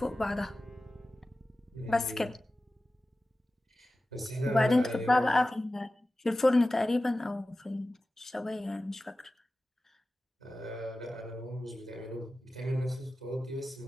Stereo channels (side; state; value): both; normal; correlation 0.95